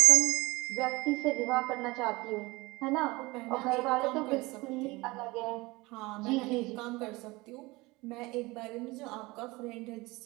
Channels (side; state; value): left; quieter; 22.6 dB